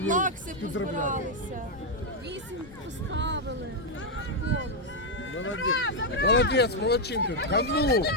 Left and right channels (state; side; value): normal; both; correlation 0.00